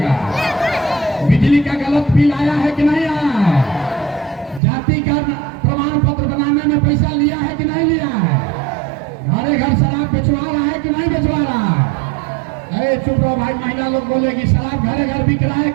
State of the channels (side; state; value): left; drops out; at 4.6 s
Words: बिजली का गलत बिल आया है कि नहीं आया है? जाति का प्रमाण पत्र बनाने में पैसा लिया है कि नहीं लिया है? घरे घर शराब बेचवा रहा है कि नहीं बेचवा रहा है? अरे चुप रहो भाई, महिला लोग बोलेगी शराब घरे घर बिक रहा है